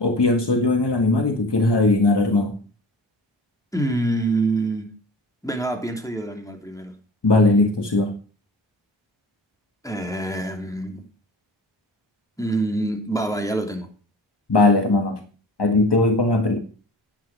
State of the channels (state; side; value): normal; both; correlation 0.39